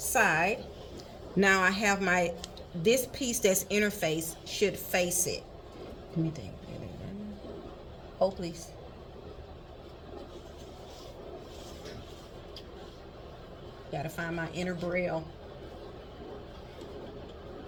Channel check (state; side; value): identical; both; correlation 1.00